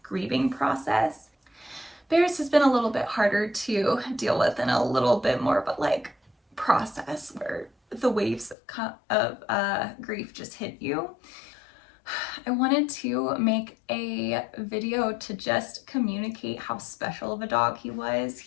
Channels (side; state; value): right; drops out; at 8.6 s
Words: grieving process. Bear's has been a little bit harder to deal with and a little bit more of a like process where the waves of grief just hit you. I wanted to make a video to just communicate how special of a dog he was.